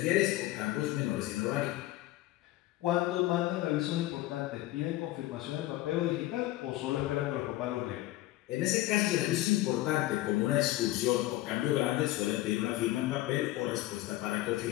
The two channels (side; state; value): right; quieter; 16.5 dB